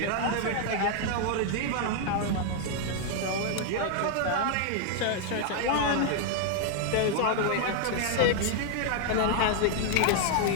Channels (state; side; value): different; both; correlation 0.00